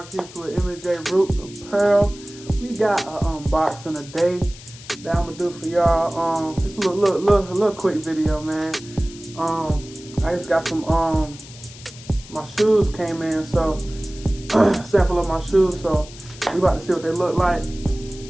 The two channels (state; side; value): noise; left; hiss, 18 dB below the sound